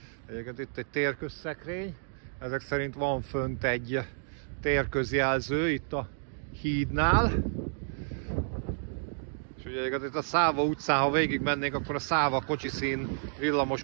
Egyébként itt egy térközszekrény. Ezek szerint van fönt egy térközjelző itt a hídnál. És ugye itt a Száva utcán, ha végig mennénk, akkor a Száva kocsiszín, villamos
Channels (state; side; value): silent; left; digital silence